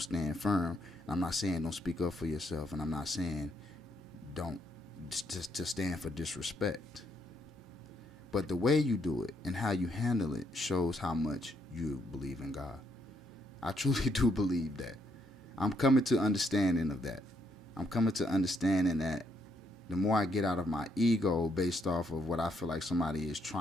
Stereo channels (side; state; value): both; normal; correlation 0.74